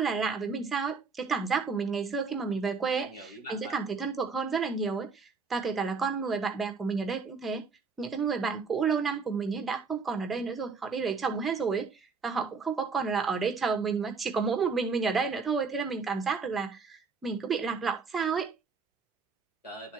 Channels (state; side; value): quieter; left; 4.9 dB